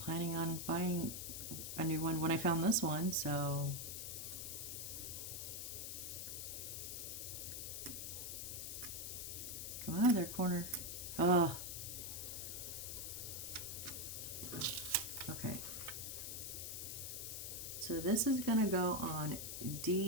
planning on buying a new one when I found this one, so... Come out of there, corner. Oh. Okay. So this is gonna go on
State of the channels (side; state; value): left; noise; hiss, 5 dB below the sound